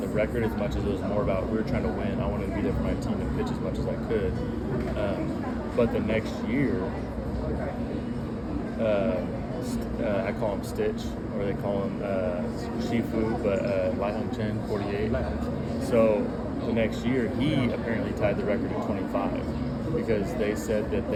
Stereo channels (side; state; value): both; identical; correlation 1.00